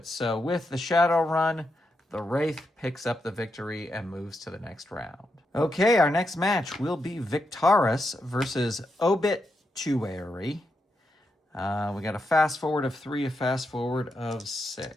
So with the Shadow Run, the Wraith picks up the victory and moves to the next round. Okay, our next match will be Victaris versus Obituary. We got a fast forward of 3, a fast forward of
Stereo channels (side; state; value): both; normal; correlation 0.84